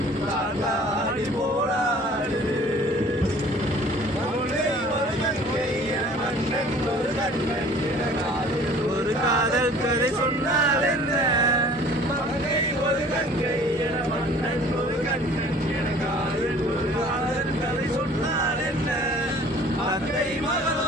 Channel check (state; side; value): normal; both; correlation 0.50